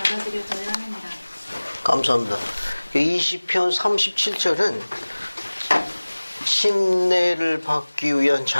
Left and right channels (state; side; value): inverted; both; correlation -1.00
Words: 합니다. 감사합니다. 20편 37절은 침례를 받기 위한